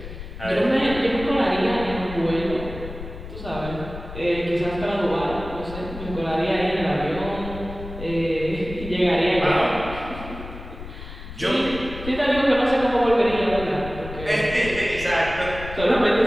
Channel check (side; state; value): left; noise; rumble, 11 dB below the sound